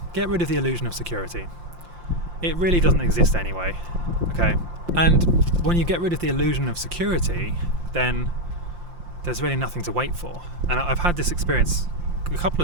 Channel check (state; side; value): late; left; 5.7 ms